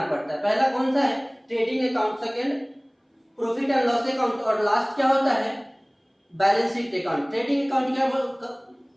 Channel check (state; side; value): identical; both; correlation 1.00